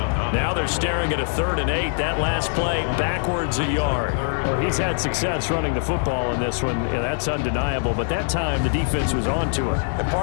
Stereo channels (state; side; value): silent; right; digital silence